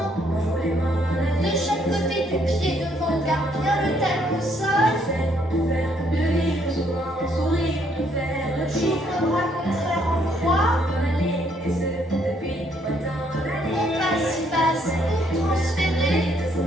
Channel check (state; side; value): normal; both; correlation 0.69